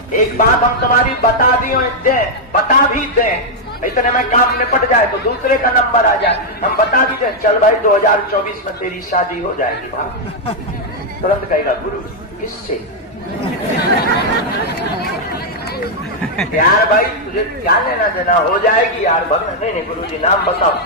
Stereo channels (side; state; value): both; normal; correlation -0.02